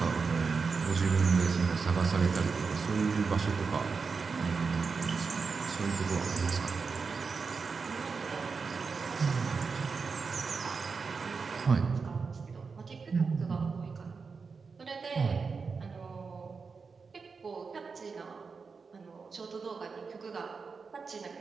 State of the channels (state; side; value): quieter; left; 5.0 dB